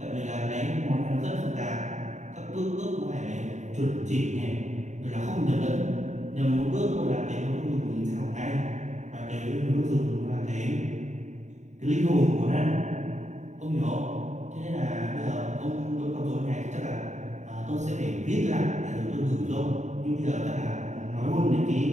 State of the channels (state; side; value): late; left; 0.34 ms